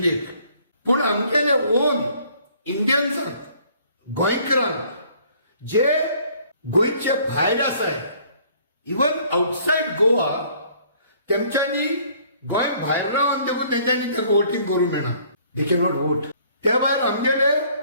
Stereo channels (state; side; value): inverted; both; correlation -0.59